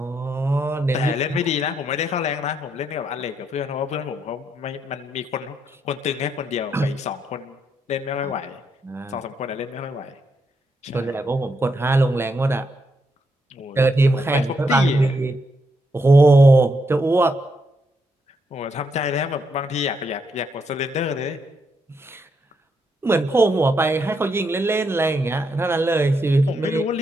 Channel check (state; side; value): normal; both; correlation 0.78